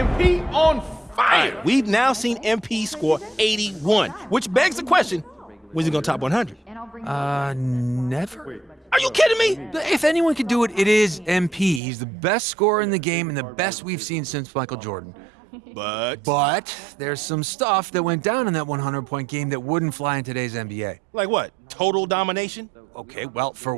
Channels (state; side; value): drops out; left; at 11.8 s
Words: On fire. Right, we've now seen MP score 81, which begs the question, when's he going to top 100? Never. Are you kidding me? If anyone could do it, it is MP. He's the best scorer in the game and the best we've seen since Michael Jordan. But there's some stuff that went down in that 100-point game that wouldn't fly in today's NBA. Like what? Total domination? Okay, well, for